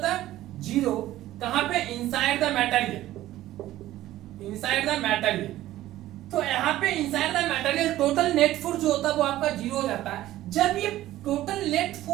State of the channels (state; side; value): quieter; left; 14.8 dB